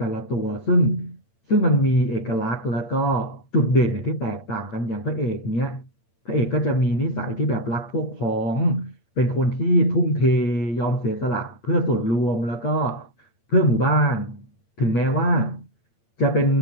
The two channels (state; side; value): late; right; 8.8 ms